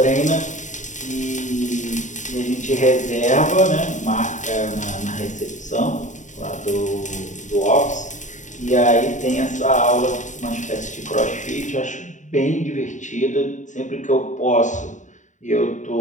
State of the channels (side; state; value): right; late; 0.36 ms